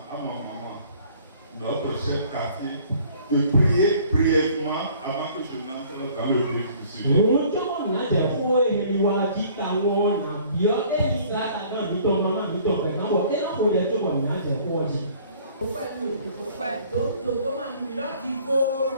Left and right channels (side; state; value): both; inverted; correlation -0.55